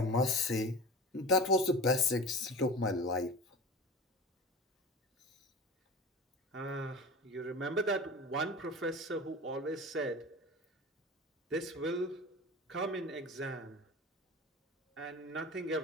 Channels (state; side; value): normal; both; correlation 0.34